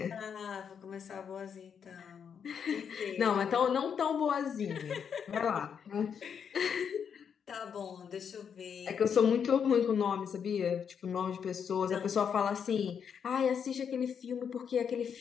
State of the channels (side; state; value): right; quieter; 7.3 dB